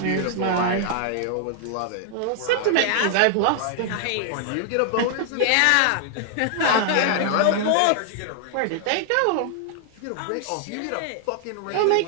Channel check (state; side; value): different; both; correlation 0.00